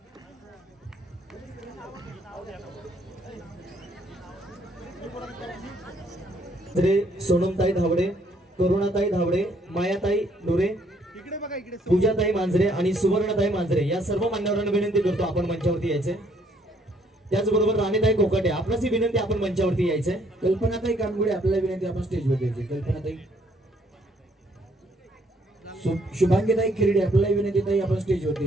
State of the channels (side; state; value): both; normal; correlation 0.66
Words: सोनमताई धावडे, करुणाताई धावडे, मायाताई डोरे, पूजाताई मांजरे आणि सुवर्णताई मांजरे या सर्व मान्यवरांना विनंती करतो आपण मंचावरती यायचे. त्याचबरोबर राणीताई कोकाटे आपणास विनंती आपण मंचावरती यायचे. कल्पनाताई कानगुडे आपल्याला विनंती आपण स्टेजवर यायचे. कल्पनाताई. शुभांगीताई खिरडे आपल्याला विनंती ताई आपण स्टेजवरती